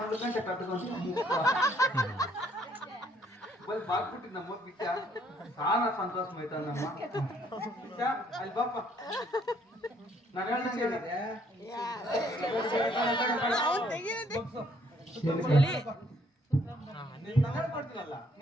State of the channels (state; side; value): normal; both; correlation 0.65